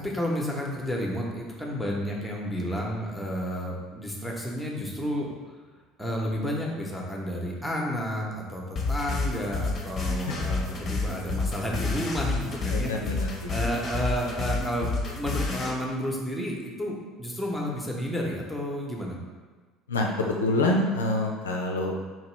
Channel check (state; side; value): normal; both; correlation 0.52